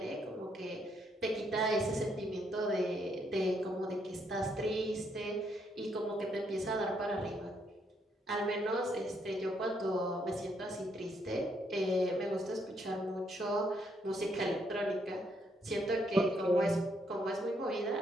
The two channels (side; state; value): both; normal; correlation 0.74